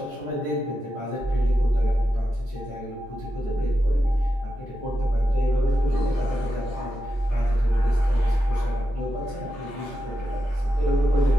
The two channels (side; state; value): both; normal; correlation 0.88